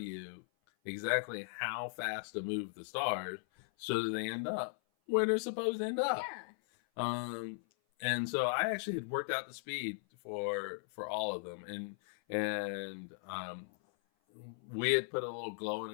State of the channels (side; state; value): right; silent; 53 dB below the other